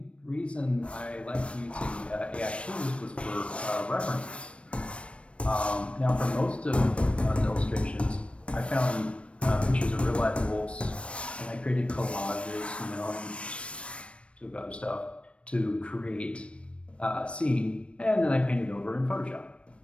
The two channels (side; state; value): right; late; 0.060 ms